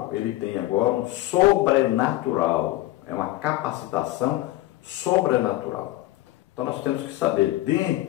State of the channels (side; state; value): right; quieter; 16.6 dB